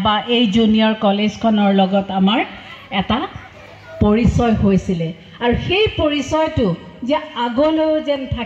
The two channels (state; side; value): identical; both; correlation 1.00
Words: বা এই জুনিয়ৰ কলেজখনৰ লগত আমাৰ এটা পৰিচয় হৈছিলে। আৰু সেই পৰিচয়টো যে আগলৈও যেন